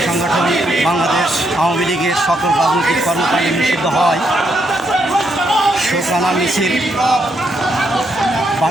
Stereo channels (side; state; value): both; normal; correlation 0.77